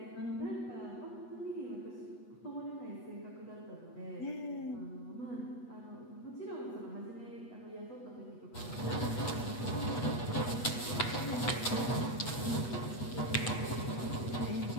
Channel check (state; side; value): late; right; 8.2 ms